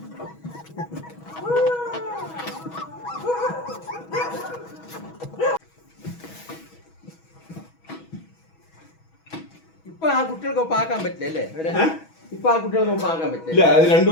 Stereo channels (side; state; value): right; late; 6.2 ms